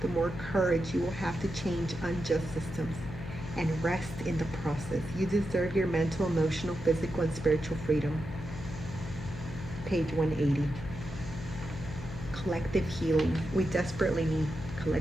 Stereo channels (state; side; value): noise; left; hum, 10 dB below the sound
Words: the more courage you will have to change unjust systems and rest in the process. You deserve your mental, emotional, physical, and spiritual freedom. Page 180. Collective healing. We desperately need